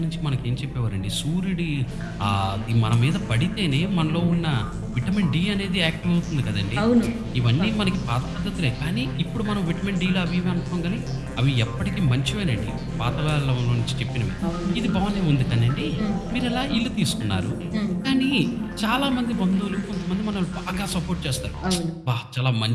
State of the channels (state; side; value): identical; both; correlation 1.00